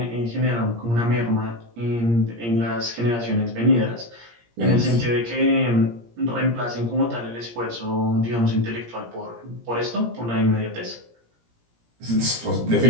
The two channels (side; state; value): left; late; 17 ms